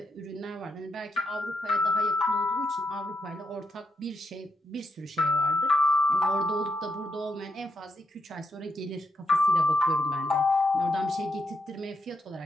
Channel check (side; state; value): both; normal; correlation 0.81